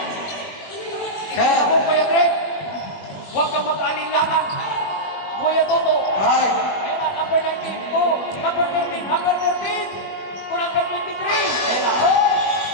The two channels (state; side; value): late; right; 21 ms